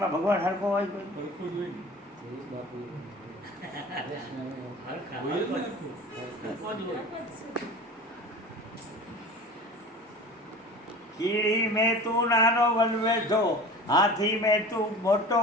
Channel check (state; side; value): normal; both; correlation 0.38